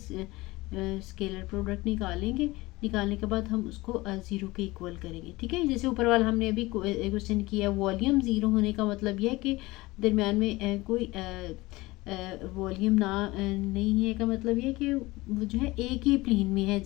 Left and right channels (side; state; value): right; quieter; 20.7 dB